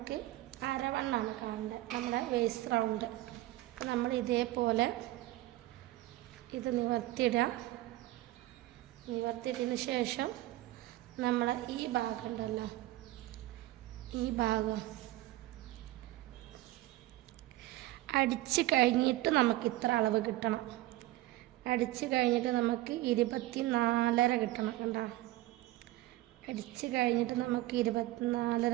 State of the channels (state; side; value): quieter; left; 16.9 dB